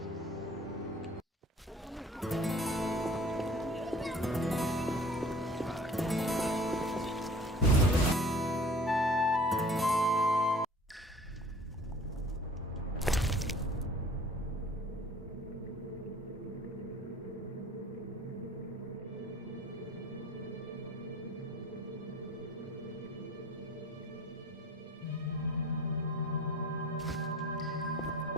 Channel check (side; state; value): both; normal; correlation 0.48